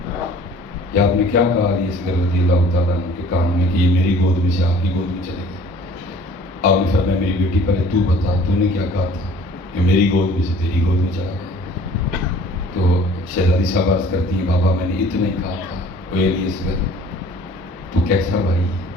یہ آپ نے کیا کہا علی اصغر رضی اللہ تعالیٰ عنہ کے کان میں کہ یہ میری گود میں سے آپ کی گود میں چلے گئے؟ آپ نے فرمایا میری بیٹی پہلے تو بتا تو نے کیا کہا تھا کہ میری گود میں سے تیری گود میں چلا گیا؟ تو شہزادی صاحب عرض کرتی ہیں بابا میں نے اتنا ہی کہا تھا، وہ علی اصغر تو کیسا بھائی،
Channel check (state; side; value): normal; both; correlation 0.51